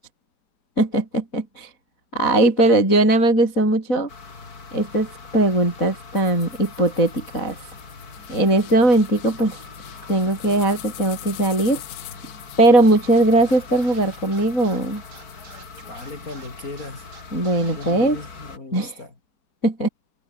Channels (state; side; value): late; right; 4.1 ms